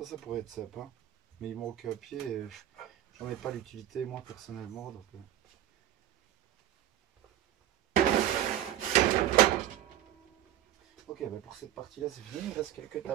Ça pourrait être sympa. Mais il manque un pied et j'en ai pas l'utilité, moi, personnellement. Donc, ok, ben pour cette partie-là, c'est fini. Il reste quelques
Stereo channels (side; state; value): left; quieter; 12.5 dB